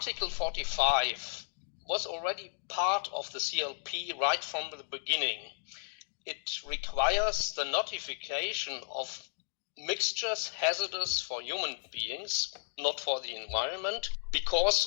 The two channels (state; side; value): silent; right; digital silence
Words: 45 was already part of the CLP right from the beginning. It requires the notification of mixtures hazardous for human beings, not for the environment,